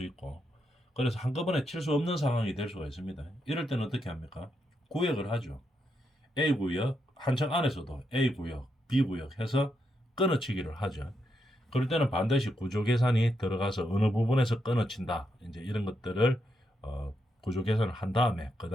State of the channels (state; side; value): normal; both; correlation 0.82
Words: 있고, 그래서 한꺼번에 칠 수 없는 상황이 될 수가 있습니다. 이럴 때는 어떻게 합니까? 구역을 하죠. A 구역, 한 층 안에서도 A 구역, B 구역 해서 끊어치기를 하죠. 그럴 때는 반드시 구조 계산이 들어가서 어느 부분에서 끊어친다. 이제 이런 것들을 구조 계산을 한 다음에 그